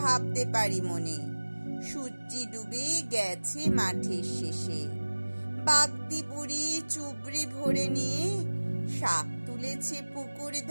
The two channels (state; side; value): inverted; both; correlation -1.00